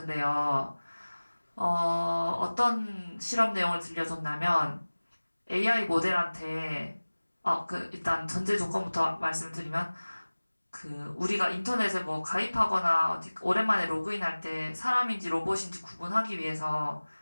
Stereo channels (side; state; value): both; inverted; correlation -1.00